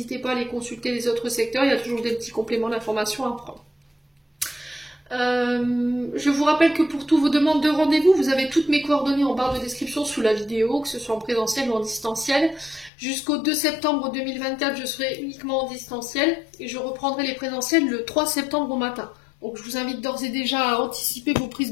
pas à aller consulter les autres secteurs, il y a toujours des petits compléments d'information à prendre. Je vous rappelle que pour toutes vos demandes de rendez-vous, vous avez toutes mes coordonnées en barre de description sous la vidéo, que ce soit en présentiel ou en distanciel. Jusqu'au 2 septembre 2024, je serai uniquement en distanciel et je reprendrai les présentiels le 3 septembre au matin. Donc je vous invite d'ores et déjà à anticiper vos prises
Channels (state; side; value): drops out; right; at 12.9 s